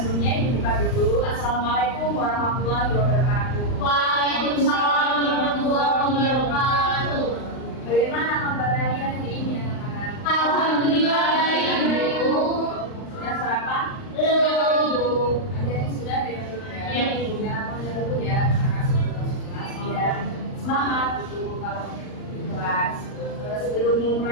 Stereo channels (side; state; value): right; late; 39 ms